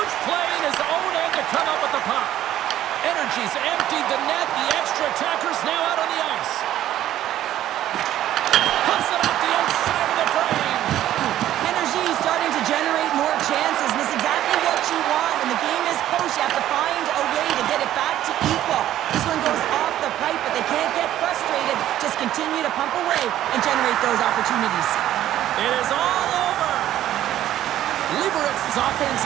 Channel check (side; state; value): left; quieter; 12.6 dB